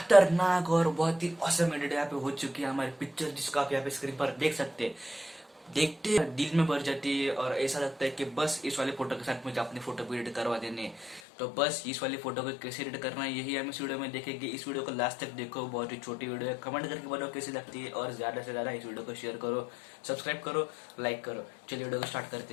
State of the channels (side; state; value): right; drops out; at 11.2 s